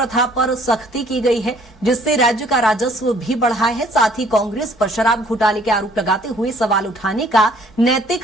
पर सख्ती की गई है, जिससे राज्य का राजस्व भी बढ़ा है। साथ ही कांग्रेस पर शराब घोटाले के आरोप लगाते हुए सवाल उठाने का नैतिक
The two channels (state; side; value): normal; both; correlation 0.59